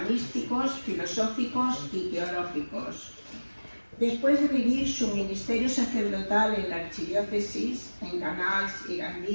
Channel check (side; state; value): both; inverted; correlation -1.00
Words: filosóficos y teológicos. Después de vivir su ministerio sacerdotal en la archidiócesis, en Canals y